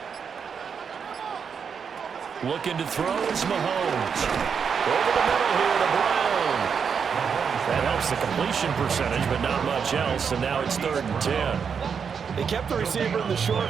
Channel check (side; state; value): left; quieter; 6.6 dB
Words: Looking to throw is Mahomes. Over the middle here to Brown. That helps the completion percentage, but not much else, and now it's 3rd and 10. They kept the receiver in the short